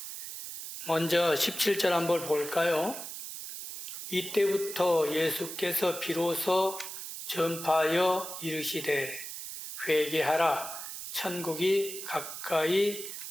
먼저 17절 한번 볼까요? 이때부터 예수께서 비로소 전파하여 이르시되 회개하라 천국이 가까이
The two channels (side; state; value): right; noise; hiss, 8 dB below the sound